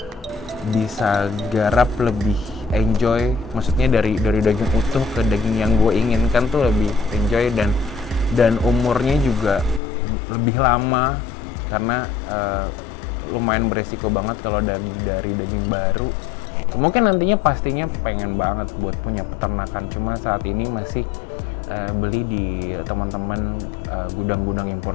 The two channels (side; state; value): right; drops out; at 9.8 s